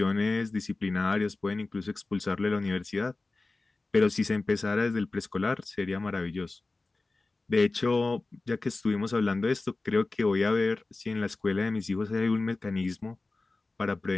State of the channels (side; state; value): right; quieter; 3.4 dB